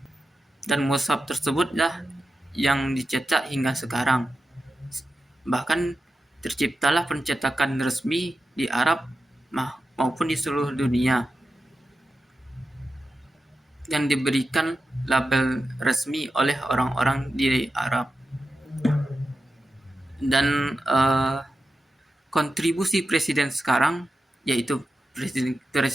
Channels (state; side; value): normal; both; correlation 0.91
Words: dan mushaf tersebutlah yang dicetak hingga sekarang. Bahkan terciptalah pencetakan resmi di Arab maupun di seluruh dunia, yang diberikan label resmi oleh orang-orang di Arab. Dan kontribusi presiden sekarang, yaitu